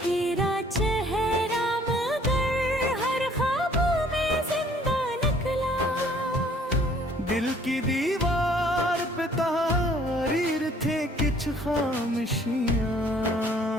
तेरा चेहरा मगर हर ख्वाबों में जिंदा निकला। दिल की दीवार पे तहरीर थे कुछ खामोशियाँ,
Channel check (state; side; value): normal; both; correlation 0.58